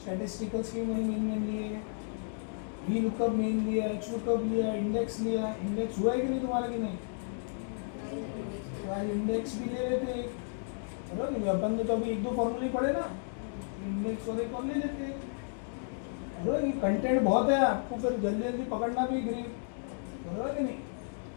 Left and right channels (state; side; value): silent; right; digital silence